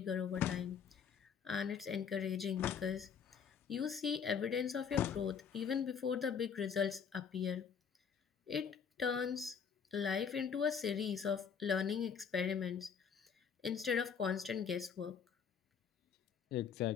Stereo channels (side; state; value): right; quieter; 6.9 dB